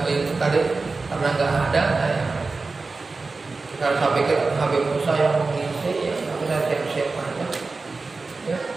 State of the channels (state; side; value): quieter; left; 3.9 dB